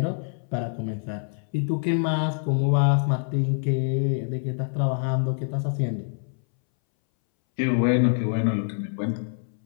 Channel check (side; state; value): right; silent; 61 dB below the other